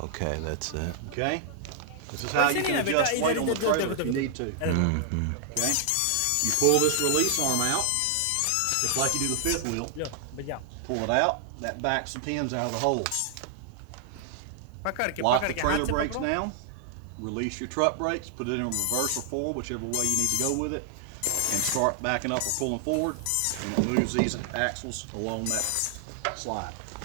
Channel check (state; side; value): different; both; correlation 0.00